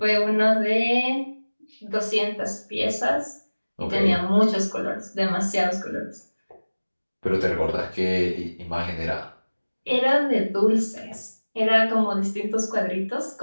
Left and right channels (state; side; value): inverted; both; correlation -1.00